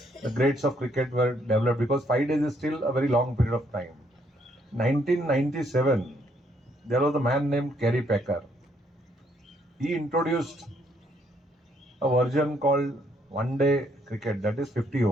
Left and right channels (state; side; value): normal; both; correlation 0.70